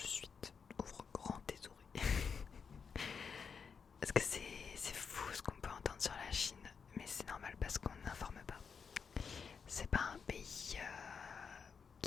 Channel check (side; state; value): right; quieter; 6.1 dB